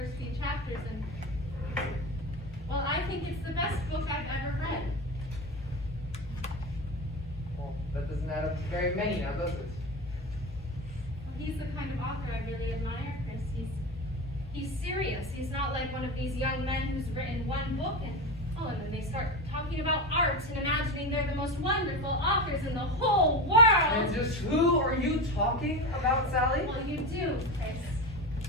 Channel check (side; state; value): both; normal; correlation 0.22